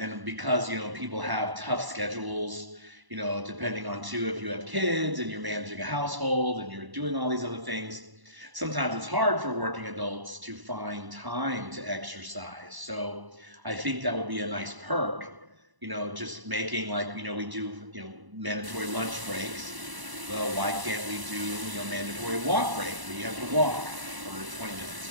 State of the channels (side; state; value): left; late; 1.0 ms